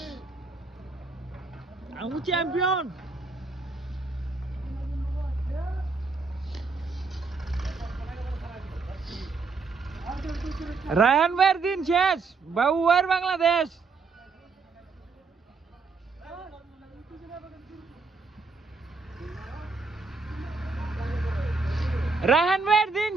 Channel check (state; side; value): quieter; left; 4.3 dB